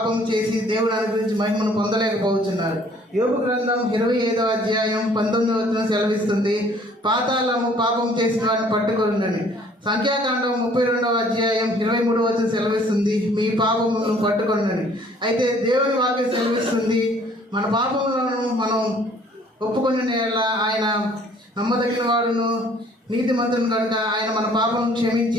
చేసి దేవుడు అనుగ్రహించి మహిమను పొందలేకపోతున్నారు. యోబు గ్రంథం 25వ అధ్యాయం 19వ వచనం సెలవిస్తుంది. పాతాళము పాపం చేసిన వారిని పట్టుకొనుండని. సంఖ్యాకాండం 32వ అధ్యాయం 23వ వచనం సెలవిస్తుంది. మీ పాపములను పట్టుకొనుండని. అయితే దేవుని వాక్యం సెలవిస్తుంది, మన పాపములను మనం ఒప్పుకొని ఆయన నమ్మదగిన వాడును నీతిమంతుని కనుక ఆయన మన పాపం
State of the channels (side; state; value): both; normal; correlation 0.57